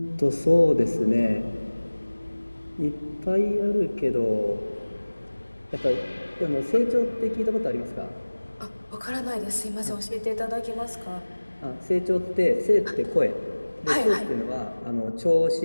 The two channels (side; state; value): both; inverted; correlation -1.00